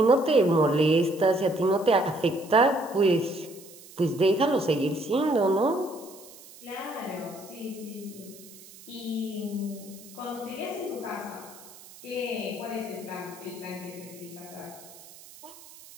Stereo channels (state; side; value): noise; right; hiss, 20 dB below the sound